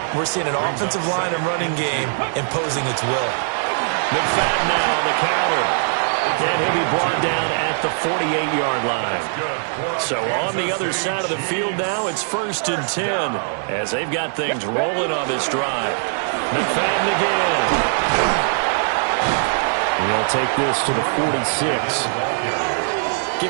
we're seeing an offensive line and running game imposing its will. McFadden now on the counter. And he'll be brought down at the 48-yard line. So on the other side of the field now, it's 1st and 10 as they've got things rolling on this drive. McFadden again. He'll take this to the 46.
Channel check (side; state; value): left; silent; digital silence